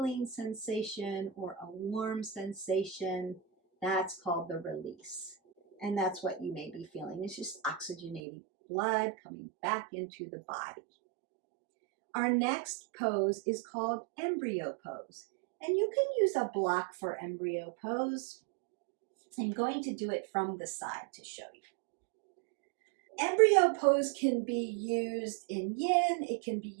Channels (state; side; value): drops out; left; at 8.2 s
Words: sensation or a warm sensation. That's called the release. And that's what you may be feeling. It's just oxygenated blood coming back into the body. Our next pose is called embryo pose. And you can use a block for embryo pose. I'm going to do it from the side to show you. Embryo pose can be used in yin. It can be